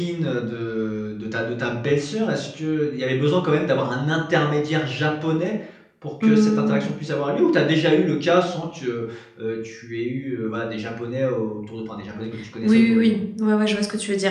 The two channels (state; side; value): identical; both; correlation 1.00